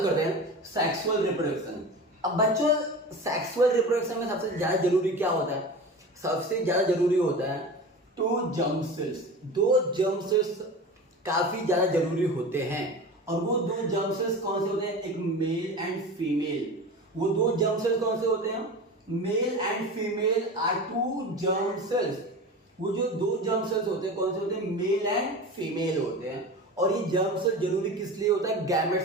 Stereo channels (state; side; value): normal; both; correlation 0.31